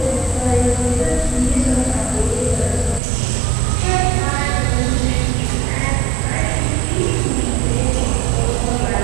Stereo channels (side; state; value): left; drops out; at 3.0 s